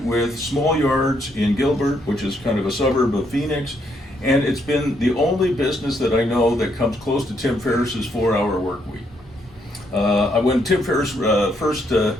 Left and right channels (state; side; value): normal; both; correlation 0.74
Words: with small yards in Gilbert, which is kind of a suburb of Phoenix. And it's been the only business that I know that comes close to Tim Ferriss's 4-hour work week. When Tim Ferriss first